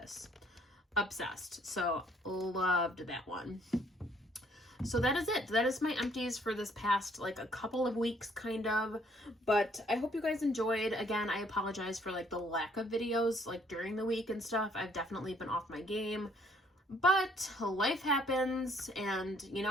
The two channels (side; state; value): both; normal; correlation 0.64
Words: Obsessed. So loved that one. So that is it. That is my empties for this past like a couple of weeks, kind of. But I hope you guys enjoyed. Again, I apologize for like the lack of videos like during the week and stuff. I've definitely been off my game. But life happens, and you know,